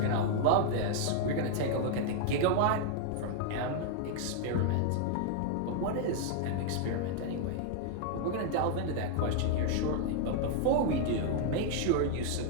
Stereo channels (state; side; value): different; both; correlation 0.00